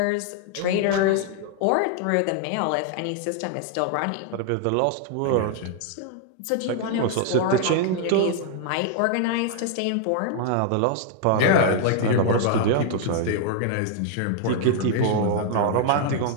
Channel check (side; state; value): both; different; correlation 0.00